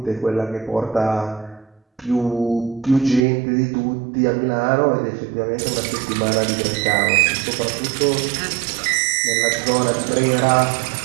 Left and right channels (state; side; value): drops out; left; at 3.2 s